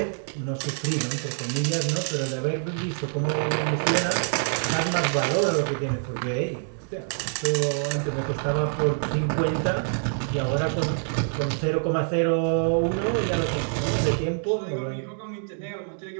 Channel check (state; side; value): silent; left; digital silence